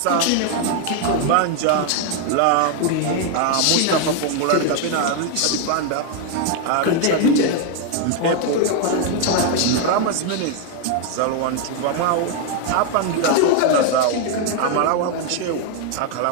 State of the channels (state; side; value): different; both; correlation 0.01